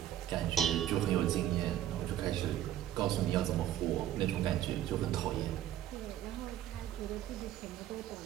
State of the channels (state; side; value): quieter; left; 12.0 dB